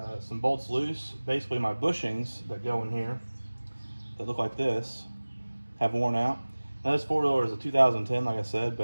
some bolts loose. Basically my bushings that go in here that look like this have worn out. Now this four-wheeler is a 2010 like I said,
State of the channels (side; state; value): both; inverted; correlation -1.00